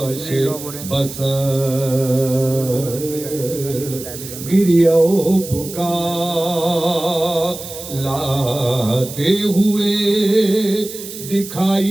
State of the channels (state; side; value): noise; right; hiss, 12 dB below the sound